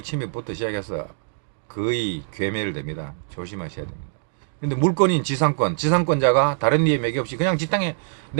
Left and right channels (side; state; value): left; silent; digital silence